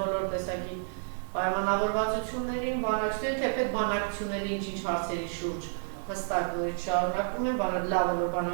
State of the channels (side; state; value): left; silent; digital silence